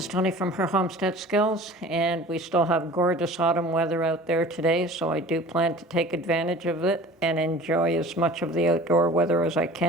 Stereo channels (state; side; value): normal; both; correlation 0.43